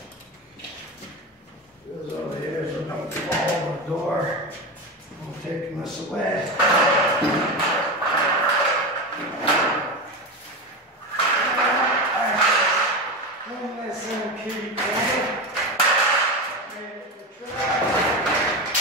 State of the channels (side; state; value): both; normal; correlation 0.19